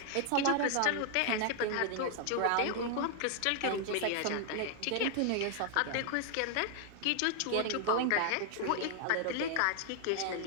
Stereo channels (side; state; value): both; different; correlation 0.00